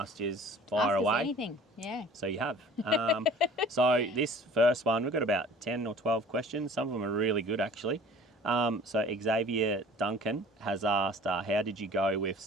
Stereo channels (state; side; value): normal; both; correlation 0.47